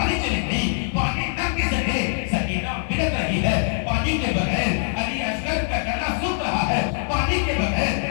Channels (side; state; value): right; silent; 61 dB below the other